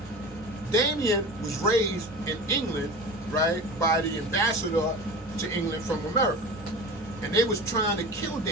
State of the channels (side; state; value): both; normal; correlation 0.33